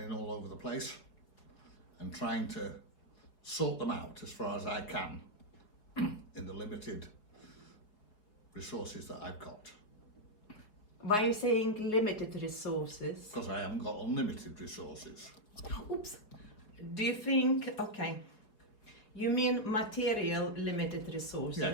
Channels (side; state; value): right; late; 4.8 ms